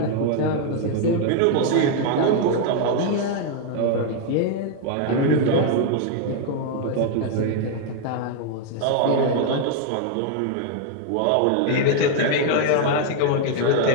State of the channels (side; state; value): both; different; correlation 0.00